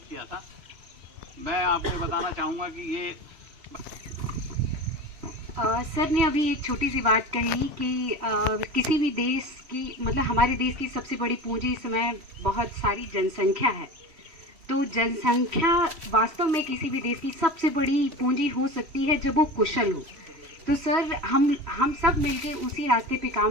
किया था। मैं आपको बताना चाहूँगा कि ये सर ने अभी एक छोटी सी बात कही कि किसी भी देश की, मतलब हमारे देश की सबसे बड़ी पूंजी इस समय बहुत सारी जनसंख्या है। तो जनसंख्या वास्तव में किसी भी देश की सबसे बड़ी पूंजी हो सकती है जब वो कुशल हो। तो सर हम सब मिलके उसी रास्ते पे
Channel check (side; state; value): left; late; 3.1 ms